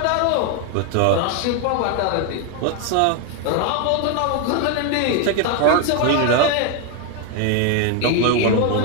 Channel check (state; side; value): different; both; correlation 0.01